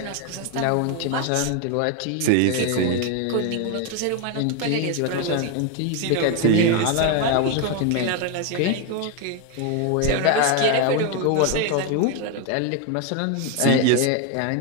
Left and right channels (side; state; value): both; different; correlation 0.01